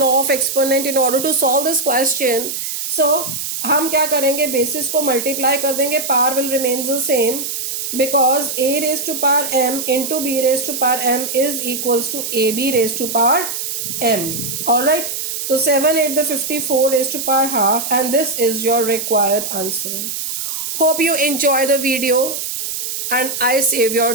law of exponent in order to solve this question. So हम क्या करेंगे, बेसिस को मल्टीप्लाई कर देंगे, power will remain the same, because a raised to power m into b raised to power m is equals to ab raised to power m. All right. So 7 8 the 54 raised to power half, and this is your required answer. Hope you enjoy the video and I save your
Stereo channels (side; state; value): right; noise; hiss, 4 dB below the sound